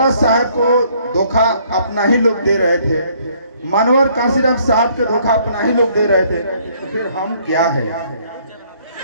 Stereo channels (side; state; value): both; inverted; correlation -0.64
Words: साहेब को धोखा अपना ही लोग दे रहे थे, मानवर काशीराम साहब के धोखा अपना ही लोग दे रहे थे, तो फिर हम क्या है?